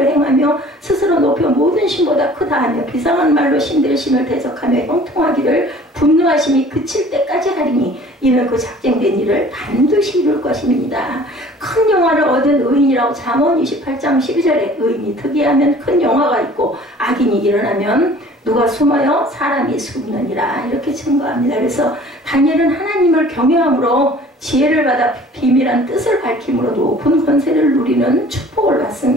행하며 스스로 높여 모든 신보다 크다 하며 비상한 말로 신들의 신을 대적하며 형통하기를 분노하심이 그칠 때까지 하리니 이는 그 작정된 일을 반드시 이룰 것입니다. 큰 영화를 얻은 의인이라고 잠언 28장 12절에 의인이 특이하면 큰 영화가 있고 악인이 일어나면 누가 숨어요? 사람이 숨느니라 이렇게 증거합니다. 그래서 다니엘은 하나님을 경외함으로 지혜를 받아 비밀한 뜻을 밝힘으로 높은 권세를 누리는 축복을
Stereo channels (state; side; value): normal; both; correlation 0.49